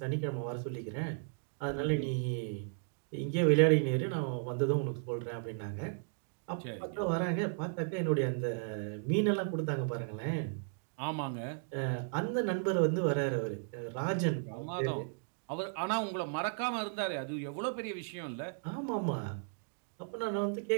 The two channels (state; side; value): silent; left; digital silence